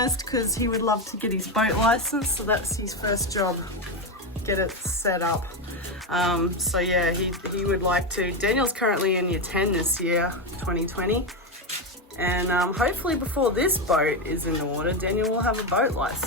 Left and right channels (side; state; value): both; normal; correlation 0.11